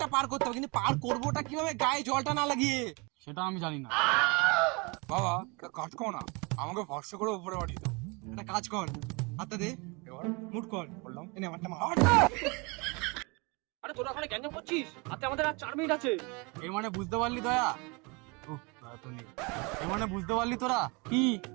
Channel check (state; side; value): quieter; left; 28.9 dB